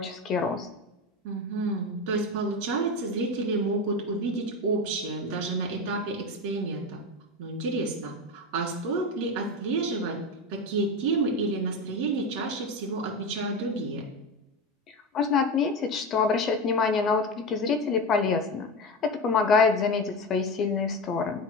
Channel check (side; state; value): both; normal; correlation 0.20